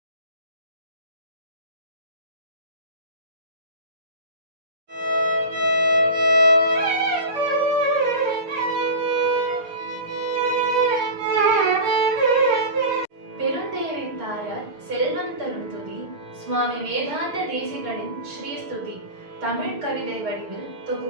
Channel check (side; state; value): left; late; 6.5 ms